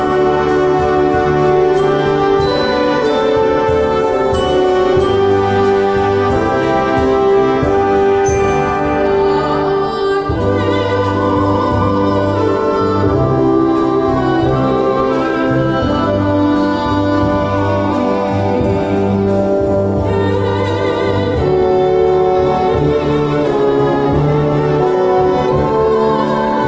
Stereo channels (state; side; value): identical; both; correlation 1.00